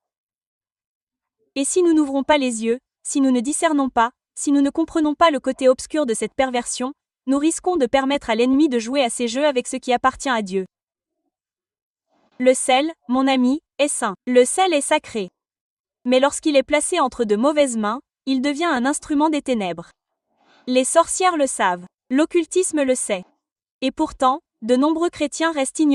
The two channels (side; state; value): both; identical; correlation 1.00